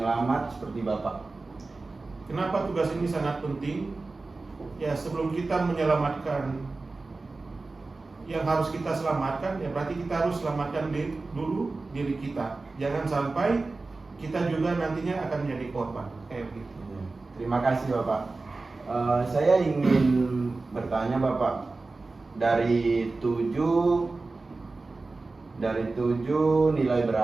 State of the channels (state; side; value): quieter; left; 3.6 dB